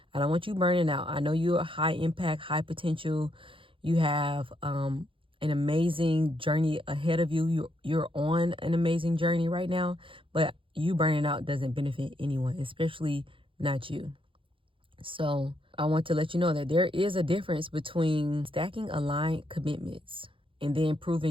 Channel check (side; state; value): left; late; 0.25 ms